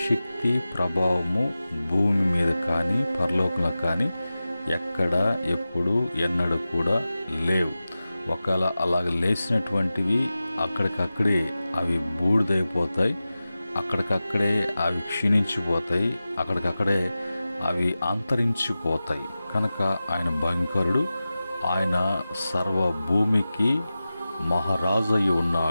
శక్తి, ప్రభావము భూమి మీద కానీ పరలోకంలో కానీ ఎక్కడ, ఎప్పుడు, ఎన్నడూ కూడా లేవు. ఒకవేళ అలాగ లేచినటువంటివి అక్కడికక్కడే అవి బూడిదైపోతాయి, అక్కడికక్కడే అవి క్షీణించిపోతాయి, అక్కడికక్కడే అవి అంతరించిపోతాయి. కనుక ఆయన భయంకరుడు, ఆయన సర్వ భూమికి మహారాజు అయి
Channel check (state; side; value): inverted; both; correlation -0.95